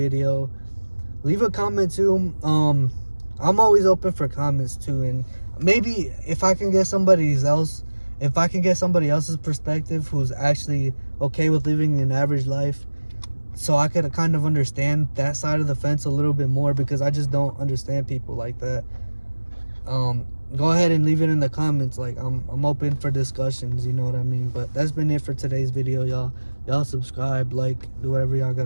Leave a comment too. I'm always open for comments too, and maybe if I can get somebody else's perspective who's actually okay with living an average life, so I could kind of understand that side of the fence a little bit more, because I just don't understand people like that. Go ahead and leave it in the comments. Like, I'm open for discussions, you know what I mean? But that's been it for today's video, y'all. Y'all subscribe, like, do whatever y'all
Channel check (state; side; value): inverted; both; correlation -1.00